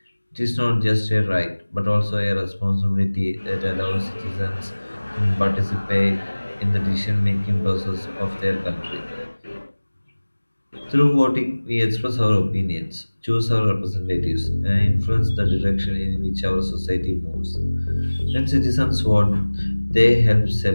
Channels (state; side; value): inverted; both; correlation -1.00